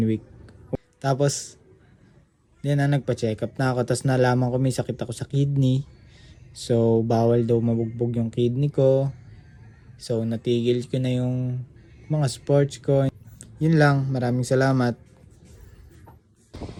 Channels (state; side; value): identical; both; correlation 1.00